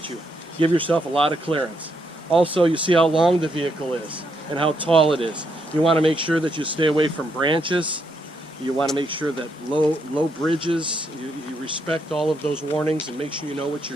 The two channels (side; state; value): both; normal; correlation 0.77